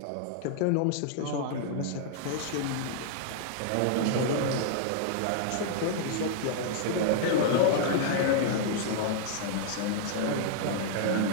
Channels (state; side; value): different; both; correlation -0.01